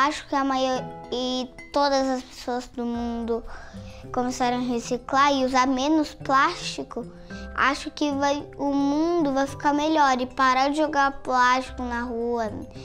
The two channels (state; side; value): identical; both; correlation 1.00